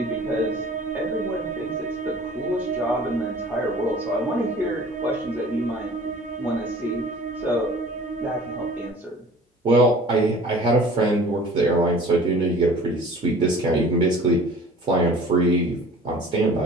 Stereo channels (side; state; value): both; normal; correlation 0.46